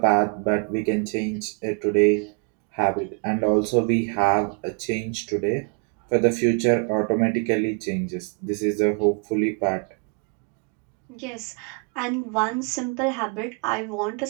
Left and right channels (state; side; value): quieter; left; 36.6 dB